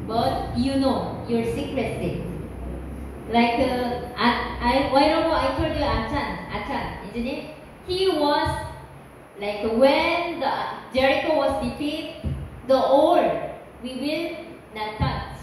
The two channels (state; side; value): identical; both; correlation 1.00